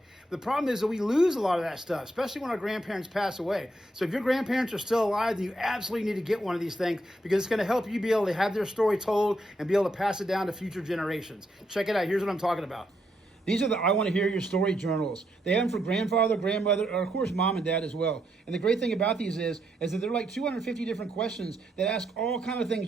The problem is that we lose a lot of that stuff, especially when our grandparents pass away. So if your grandparents are still alive, then you absolutely need to get one of these things, because it's going to help you be able to have their story told and be able to pass it down to future generations. Check it out. Here's what I'm talking about. These are the I Want to Hear Your Story journals. They have them for grandfather, grandmother, or of course mom and dad as well. And the great thing about these is that they're like 250 different questions that ask all kind of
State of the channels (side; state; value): both; normal; correlation 0.78